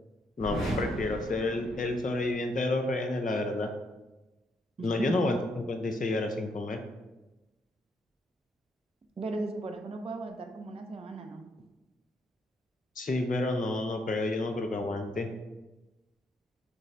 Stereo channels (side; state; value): both; normal; correlation 0.74